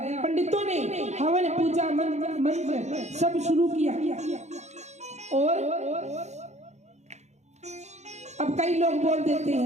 पंडितों ने हवन पूजा मंत्र सब शुरू किया और अब कई लोग बोल देते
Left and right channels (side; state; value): left; late; 0.33 ms